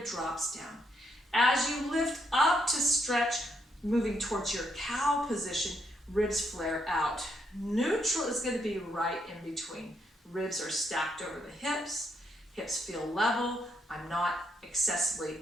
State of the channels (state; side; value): normal; both; correlation 0.76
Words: drops down. As you lift up to stretch, moving towards your cow position, ribs flare out. Neutral is going to be right in between. Ribs are stacked over the hips. Hips feel level. I'm not excessively